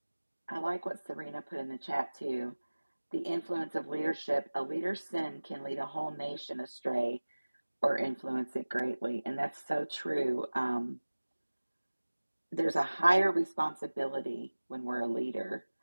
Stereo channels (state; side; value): inverted; both; correlation -1.00